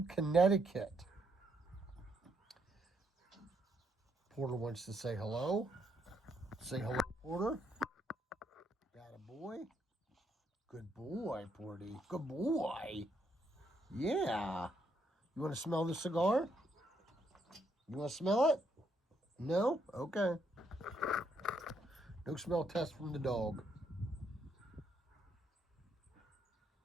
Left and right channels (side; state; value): both; normal; correlation 0.75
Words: Connecticut. Porter wants to say hello. Say hello, Porter. Got a boy. Good boy, Porty. Good boy. Yeah. You want to smell the cigar? You want to smell it? No? Okay. No smell test from the dog.